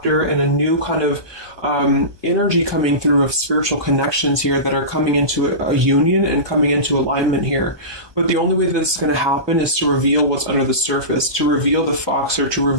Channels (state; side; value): late; left; 1.2 ms